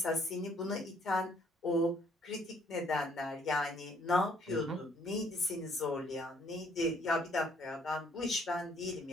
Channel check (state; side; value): normal; both; correlation 0.64